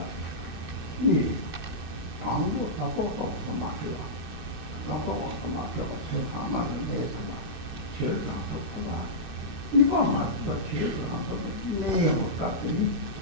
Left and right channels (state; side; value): late; left; 2.6 ms